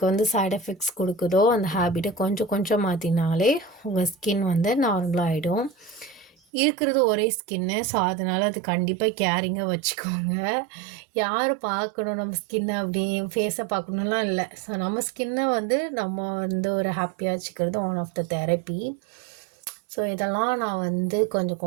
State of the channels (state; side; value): drops out; left; at 6.3 s